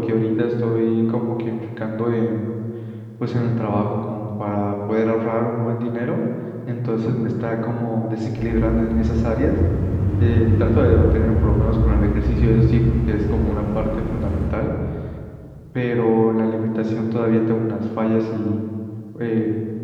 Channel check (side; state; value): both; identical; correlation 1.00